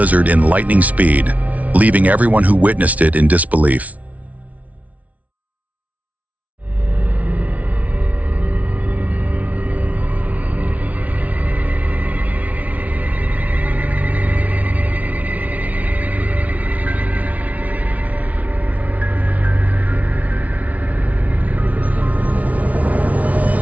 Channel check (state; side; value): late; left; 0.069 ms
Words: in lightning speed, leaving everyone who witnessed it in disbelief.